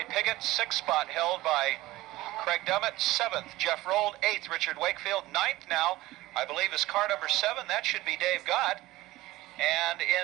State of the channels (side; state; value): left; quieter; 17.8 dB